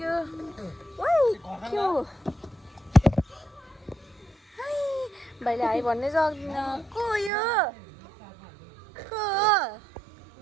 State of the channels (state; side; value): drops out; left; at 7.3 s